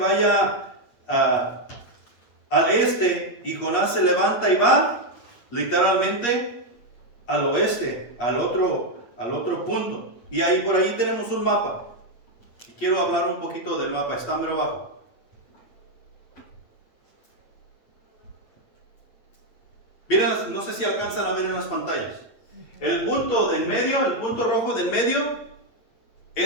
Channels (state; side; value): late; right; 8.4 ms